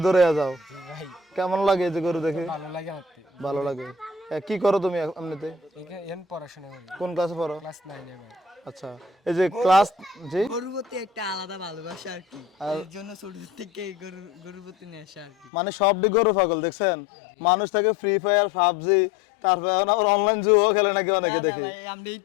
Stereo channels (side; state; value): right; drops out; at 15.5 s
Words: দৌড়ে যাও। কেমন লাগে এই যে গরু দেখে? ভালো লাগে আমার ভালো লাগে। কি করো তুমি এমনিতে? এখন পড়াশোনা করি, কোন ক্লাসে পড়ো? ক্লাস 9 এ পড়ি। আচ্ছা, এই যে ক্লাস, জি, গরুর প্রতি একটা আলাদা ভালোবাসা আর কি, এর জন্য ছোট থেকে গরুর প্রতি নেশা আর কি। মানে সবটি গরু পাগল দেখছেন। মানুষ থাকে ফ্রি ফায়ার, পাবজি, তারপরে এখন আবার অনলাইন জুয়ো খেলে নাকি অনেকে দেখি। আমরা